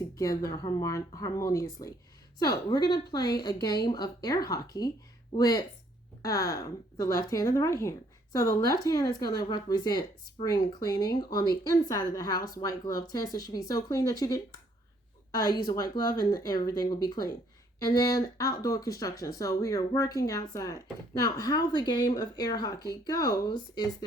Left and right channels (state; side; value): normal; both; correlation 0.66